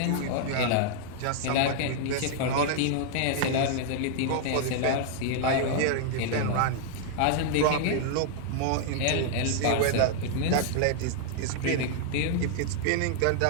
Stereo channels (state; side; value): different; both; correlation 0.00